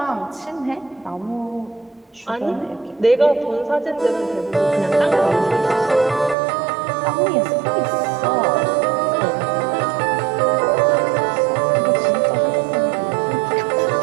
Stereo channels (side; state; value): left; drops out; at 6.4 s